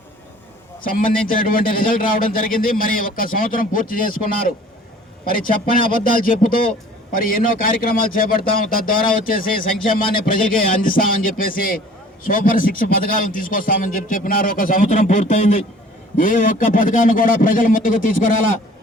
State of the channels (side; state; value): both; normal; correlation 0.50